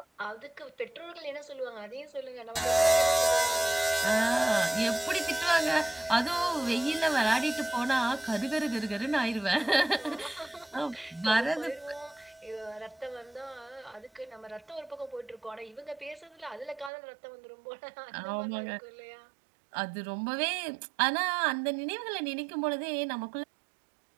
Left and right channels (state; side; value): drops out; left; at 16.9 s